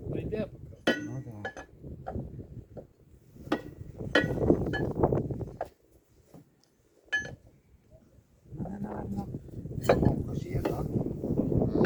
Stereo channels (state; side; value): identical; both; correlation 1.00